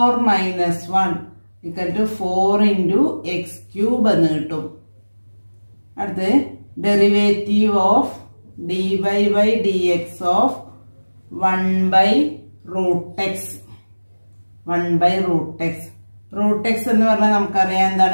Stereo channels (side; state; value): both; inverted; correlation -1.00